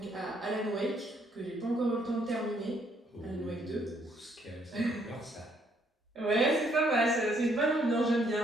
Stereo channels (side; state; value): both; normal; correlation 0.69